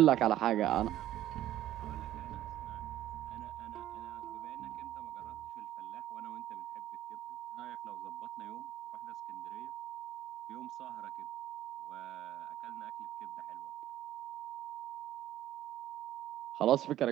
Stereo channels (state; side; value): quieter; left; 13.1 dB